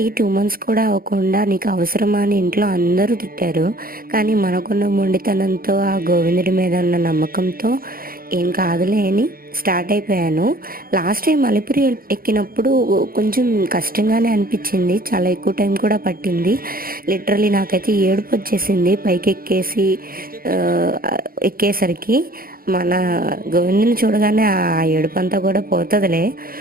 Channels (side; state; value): left; late; 0.42 ms